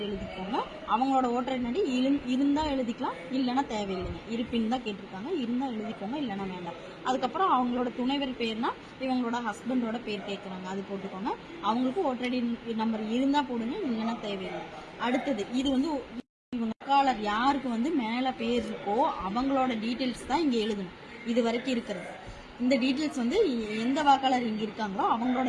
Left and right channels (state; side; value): identical; both; correlation 1.00